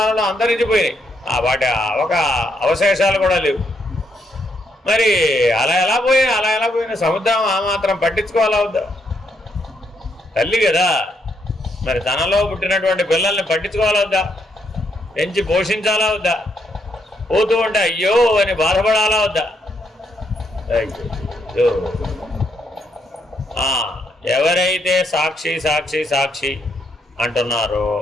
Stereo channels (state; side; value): normal; both; correlation 0.76